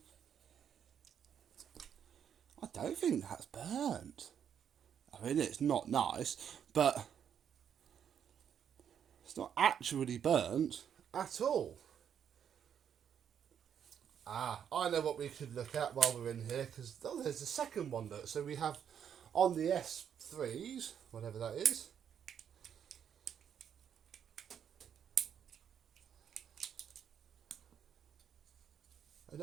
I don't think that's burnt. I mean, it's not nice, but it's not actually burnt at all. I know what we could look at while we're in here, because there's the second one. Look, so we have on the S3s, whatever that is. Oh,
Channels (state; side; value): quieter; left; 8.5 dB